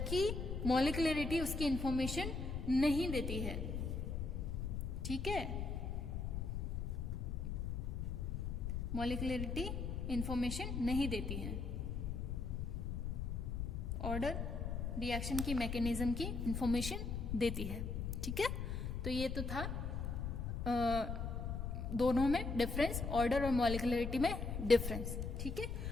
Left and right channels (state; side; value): noise; left; rumble, 2 dB below the sound